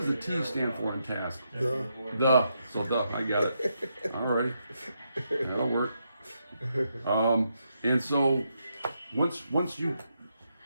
the T stand for in task? The I got it. Alrighty, that'll work. And so once you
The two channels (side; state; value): both; inverted; correlation -0.81